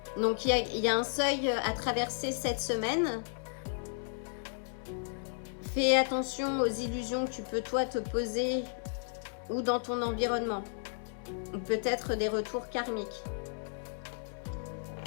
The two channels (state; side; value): silent; right; 55 dB below the other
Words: Donc il y a un seuil à traverser cette semaine. Fais attention aux illusions que tu peux toi te poser ou dans ton environnement. Ou peut-être des retours karmiques.